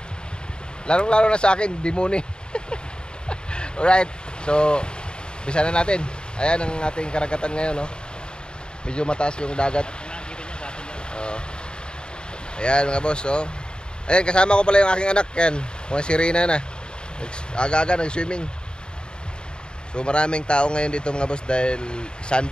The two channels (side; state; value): right; late; 0.049 ms